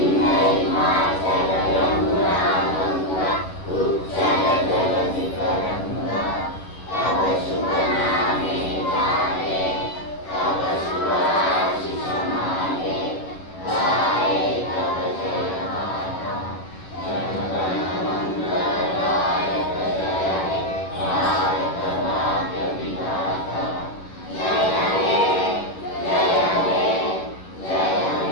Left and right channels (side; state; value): right; late; 11 ms